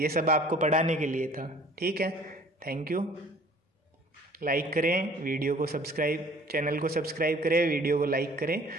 सब आपको पढ़ाने के लिए था, ठीक है। Thank you. लाइक करें वीडियो को, सब्सक्राइब, चैनल को सब्सक्राइब करें, वीडियो को लाइक करें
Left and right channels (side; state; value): both; normal; correlation 0.52